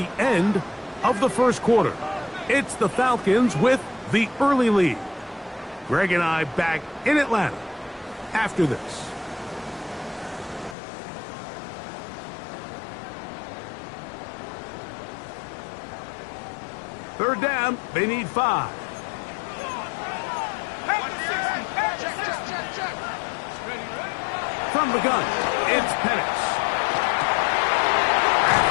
end of the 1st quarter. It's the Falcons with the early lead. Greg and I back in Atlanta after this. Third down, they need 5. From the gun, it's Penix.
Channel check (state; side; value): drops out; right; at 10.8 s